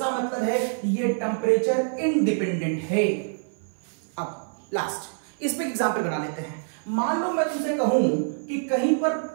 मतलब है ये टेम्परेचर इंडिपेंडेंट है। अब लास्ट इस पे एग्जांपल बना लेते हैं। मान लो मैं तुमसे कहूं कि कहीं पर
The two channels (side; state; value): left; silent; 57 dB below the other